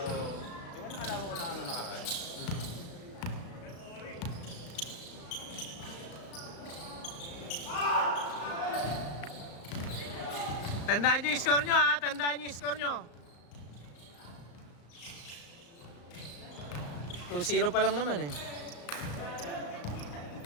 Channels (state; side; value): late; right; 35 ms